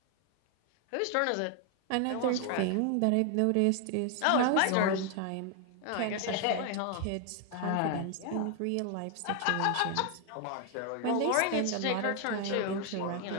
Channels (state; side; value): different; both; correlation 0.00